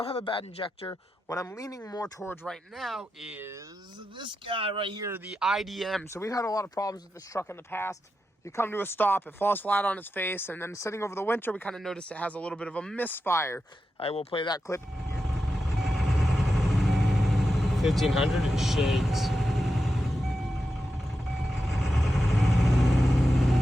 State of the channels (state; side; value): normal; both; correlation 0.89